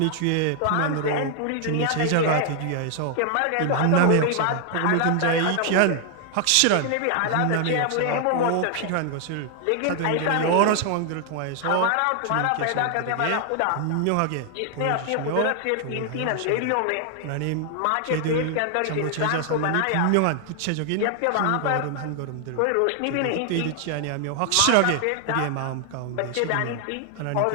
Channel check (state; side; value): different; both; correlation 0.00